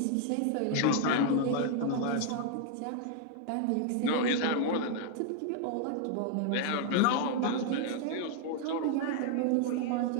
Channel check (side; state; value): both; different; correlation 0.00